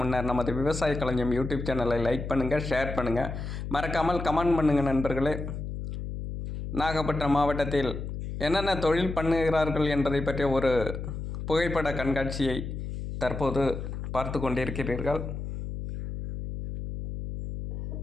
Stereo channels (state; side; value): noise; left; hum, 6 dB below the sound